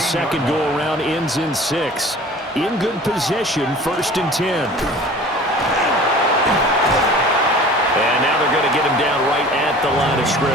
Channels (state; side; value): normal; both; correlation 0.44